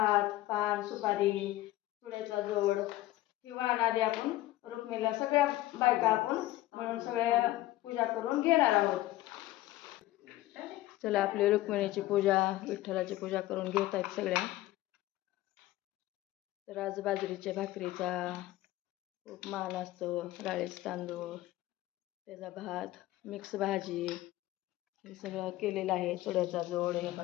पान, सुपारी, चुड्याचा जोड ही वाण आधी आपण रुक्मिणीला सगळ्या बायका आपण म्हणून सगळ्या पूजा करून घेणार आहोत. चला, आपली रुक्मिणीची पूजा, विठ्ठलाची पूजा करून घेत आहेत सगळ्या. तर आज बाजरीच्या भाकरीचा खूप मान असतो, राळेच तांदूळ, त्याचा भात, मिक्स भाजी हे सगळं केलेलं आहे. चुड्याचा जोड, हे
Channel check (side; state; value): right; quieter; 16.2 dB